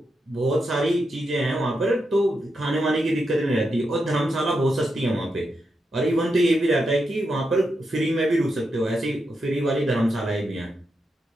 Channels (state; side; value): normal; both; correlation 0.85